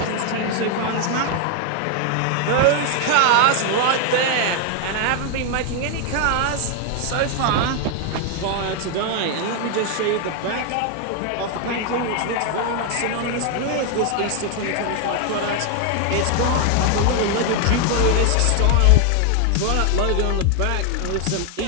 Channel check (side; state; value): both; different; correlation 0.01